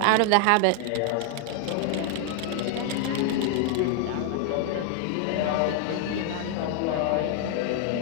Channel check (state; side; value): different; both; correlation 0.00